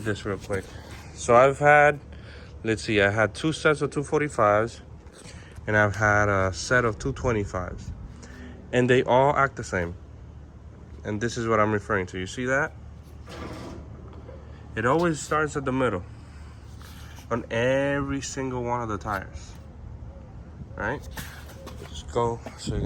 this real quick. So I've had, let's see, I had two sets of 245s and I've had a set of 225s, and they all act the same. And this is what I'm referring to. You see that? It always starts at the middle on every single one of the tires, right? Just go so you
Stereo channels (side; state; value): both; identical; correlation 1.00